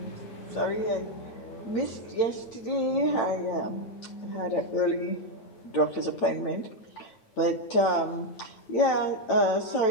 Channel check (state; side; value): late; right; 9.0 ms